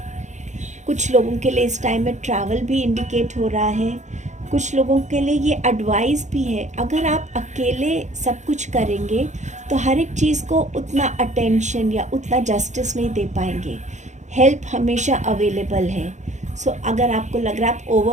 कुछ लोगों के लिए इस टाइम में ट्रैवल भी इंडिकेट हो रहा है। कुछ लोगों के लिए ये एडवाइस भी है, अगर आप अकेले सब कुछ करेंगे तो हर एक चीज़ को उतना अटेंशन या उतना जस्टिस नहीं दे पाएंगे। हेल्प हमेशा अवेलेबल है। सो अगर आपको लग रहा है आप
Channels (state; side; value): late; left; 0.34 ms